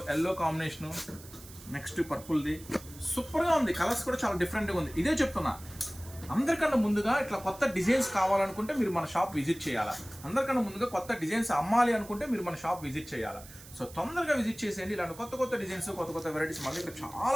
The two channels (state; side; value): noise; right; hiss, 18 dB below the sound